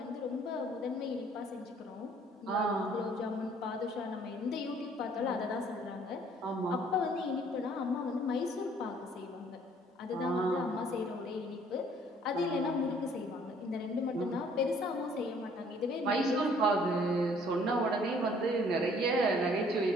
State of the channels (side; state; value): both; normal; correlation 0.59